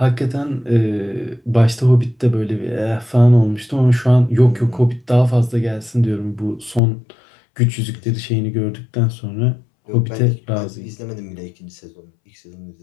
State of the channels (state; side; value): drops out; right; at 6.8 s